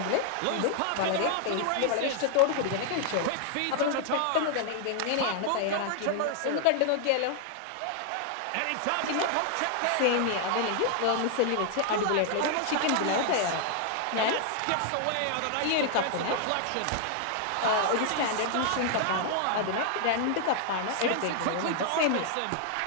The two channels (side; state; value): both; different; correlation 0.00